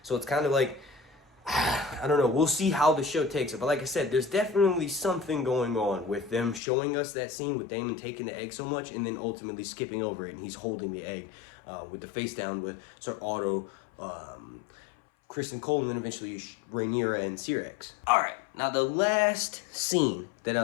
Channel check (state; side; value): drops out; right; at 6.6 s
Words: So it's kind of like, I don't know, we'll see how the show takes it. But like I said, there's definitely something going on with them showing us that scene with Daemon taking the egg so much and then ultimately skipping over it, and he's holding the egg with the face down with Ser Otto, Kristen Cole, and then eventually Rhaenyra and Syrax. Alright, now the last scene that